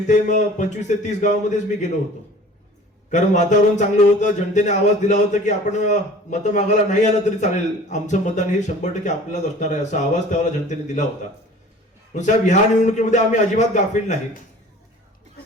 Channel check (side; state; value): both; normal; correlation 0.46